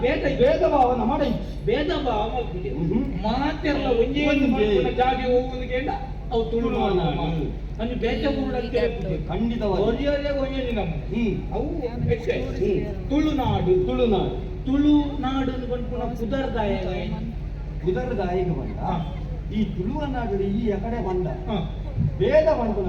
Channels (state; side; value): identical; both; correlation 1.00